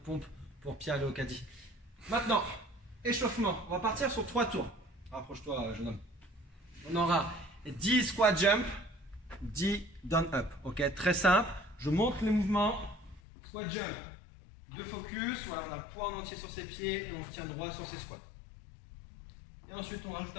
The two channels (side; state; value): right; drops out; at 13.2 s